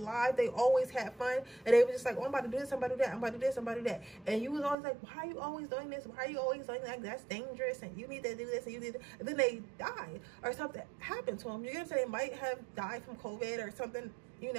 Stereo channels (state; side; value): drops out; left; at 4.8 s